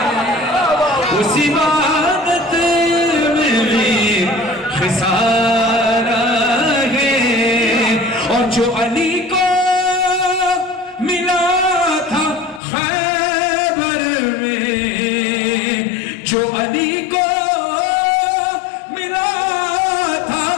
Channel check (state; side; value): drops out; right; at 12.6 s